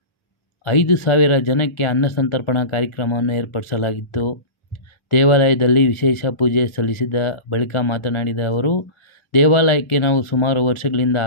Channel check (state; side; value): late; right; 1.4 ms